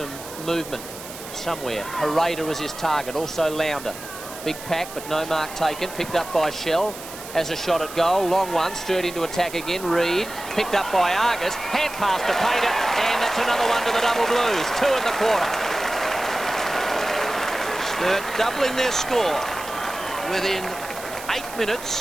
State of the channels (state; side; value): noise; right; hiss, 13 dB below the sound